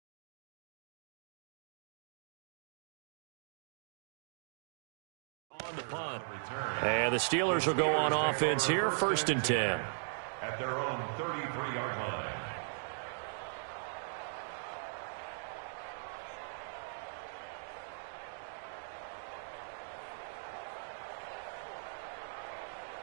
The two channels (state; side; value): silent; left; digital silence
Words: on the punt. And the Steelers will go on offense here, 1st and 10. At their own 33-yard line.